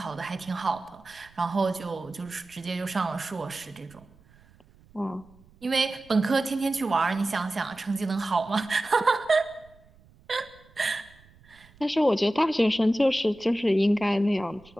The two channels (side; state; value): right; noise; rumble, 28 dB below the sound